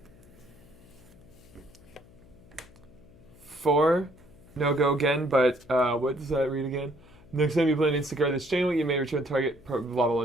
4. No go again, but what does that read again? Next time you play an instant card this channel, you may return target. Blah blah blah.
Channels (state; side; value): noise; left; hum, 24 dB below the sound